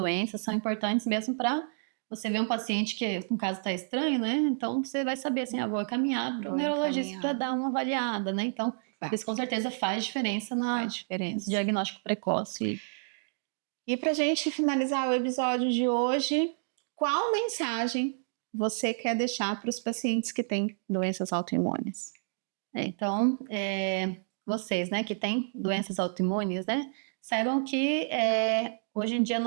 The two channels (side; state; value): left; silent; digital silence